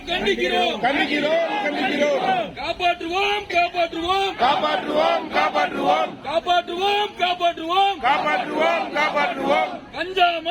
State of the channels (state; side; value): identical; both; correlation 1.00